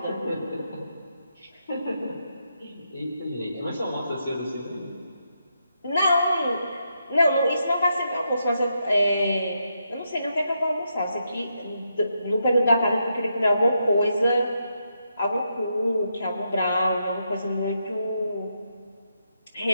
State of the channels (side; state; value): both; inverted; correlation -0.82